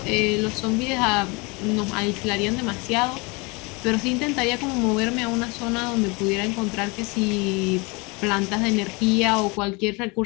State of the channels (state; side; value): quieter; right; 27.9 dB